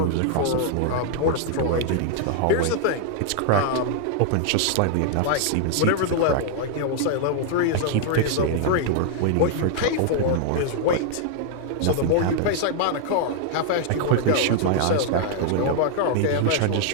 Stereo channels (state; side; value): different; both; correlation 0.00